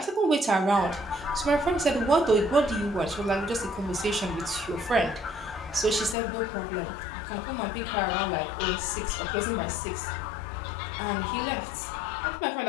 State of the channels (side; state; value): right; drops out; at 6.2 s